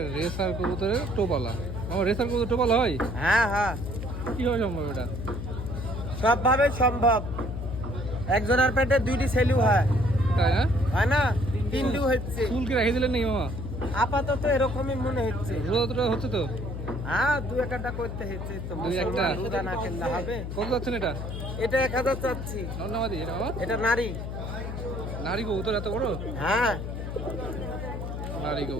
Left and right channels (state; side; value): noise; left; hum, 6 dB below the sound